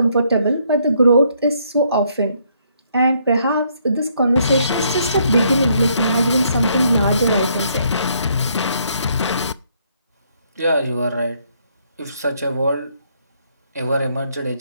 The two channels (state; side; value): inverted; both; correlation -0.70